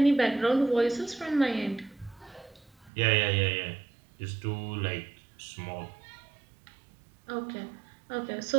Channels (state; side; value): drops out; left; at 2.9 s